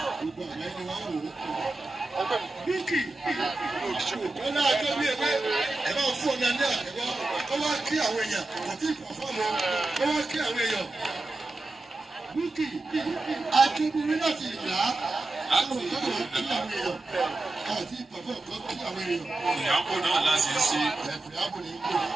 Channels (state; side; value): quieter; left; 3.0 dB